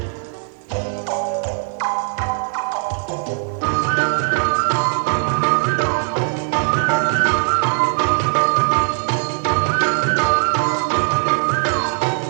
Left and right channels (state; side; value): silent; left; digital silence